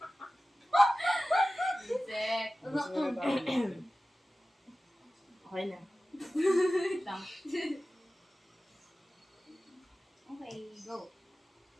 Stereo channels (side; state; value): both; normal; correlation 0.96